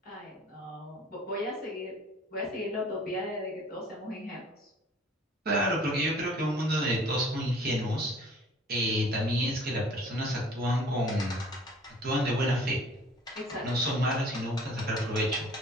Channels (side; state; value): both; normal; correlation 0.51